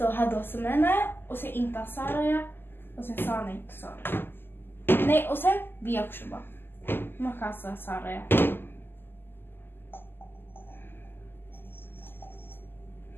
هذا سمينا وسي إنت صاريا وسي صاني تصار ني وسي بيكشبا ما كان صاريا.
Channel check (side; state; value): right; late; 0.099 ms